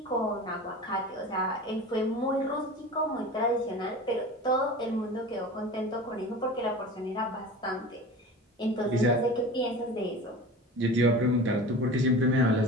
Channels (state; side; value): normal; both; correlation 0.35